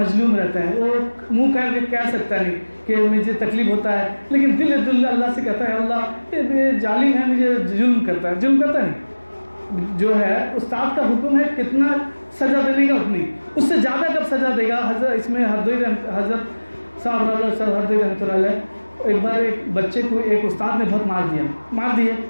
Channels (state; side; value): inverted; both; correlation -1.00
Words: رہتا ہے. وہ منہ کر کے کہہ سکتا نہیں کہ مجھے تکلیف ہوتا ہے, لیکن دل اللہ سے کہتا ہے اللہ یہ ظالم ہے, مجھے ظلم کرتا نہیں. جو ہے استاد کا حکم ہے کتنا سزا دینے کا اتنی, اس سے زیادہ کب سزا دے گا. اس میں حضرت صاحب ہردوئی رحمۃ اللہ علیہ, ایک بار ایک بچے کو ایک استاد نے بہت مار دیا.